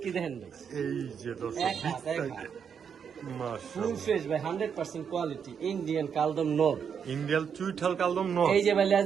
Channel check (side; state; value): left; quieter; 7.2 dB